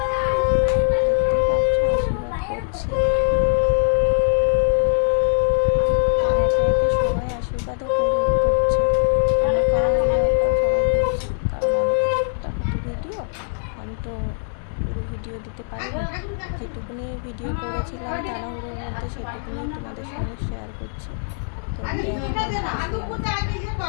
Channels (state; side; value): silent; right; digital silence